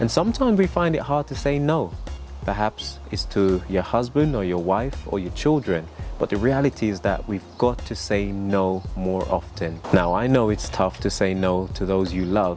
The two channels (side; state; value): both; identical; correlation 1.00